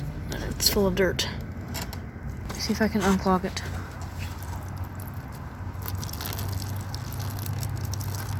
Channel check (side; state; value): both; identical; correlation 1.00